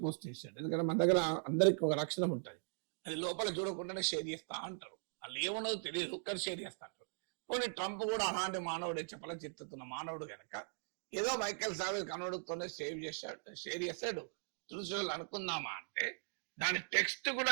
పోస్ట్ చేశాడు. ఎందుకంటే మన దగ్గర అందరికి ఒక లక్షణం ఉంటుంది, అది లోపల చూడకుండానే షేర్ చేస్తా అంటారు. వాళ్ళు ఏమన్నదో తెలియదు, కానీ షేర్ చేస్తా అంటారు. పోనీ ట్రంప్ కూడా అలాంటి మానవుడే, చెప్పల చిత్తున్న మానవుడు కనుక ఏదో మైకేల్ సావేజ్ కనోడుతోనే షేర్ చేశాడు చూసేవాళ్ళు అనుకుందామా అంటే, దాని టెక్స్ట్ కూడా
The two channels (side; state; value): left; silent; digital silence